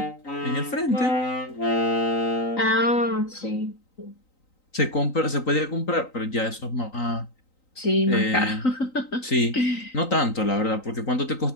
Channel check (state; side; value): late; right; 3.9 ms